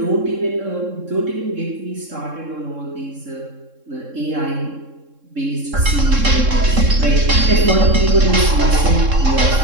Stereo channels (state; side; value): late; left; 3.7 ms